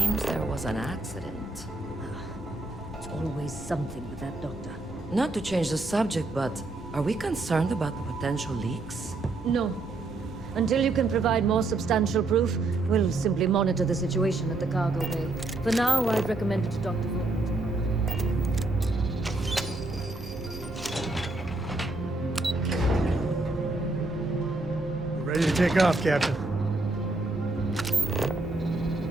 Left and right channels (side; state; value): left; quieter; 3.1 dB